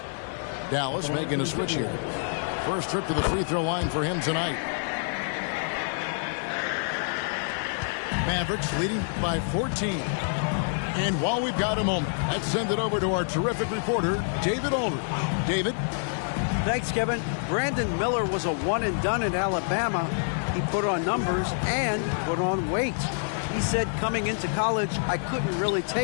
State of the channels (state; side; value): silent; right; digital silence